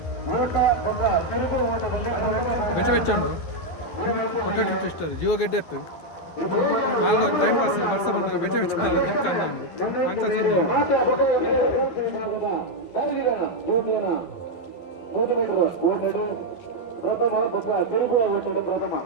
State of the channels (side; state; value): right; late; 12 ms